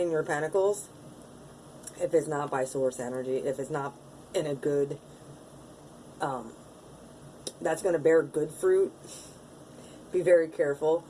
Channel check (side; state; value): both; identical; correlation 1.00